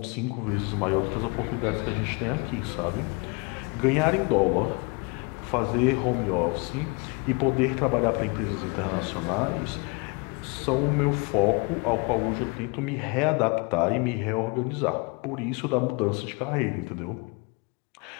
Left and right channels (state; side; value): quieter; right; 30.0 dB